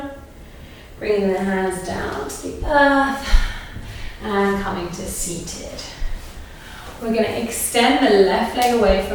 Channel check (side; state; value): both; identical; correlation 1.00